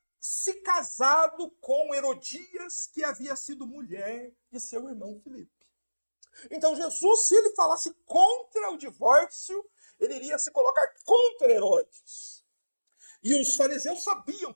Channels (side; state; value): both; inverted; correlation -1.00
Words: se casado com Herodias, que havia sido mulher de seu irmão Filipe. Então Jesus, se ele falasse contra o divórcio, ele iria se colocar contra Herodes. E os fariseus sabiam